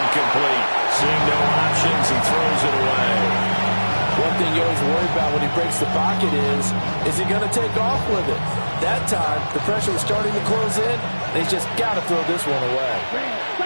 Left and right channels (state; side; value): inverted; both; correlation -1.00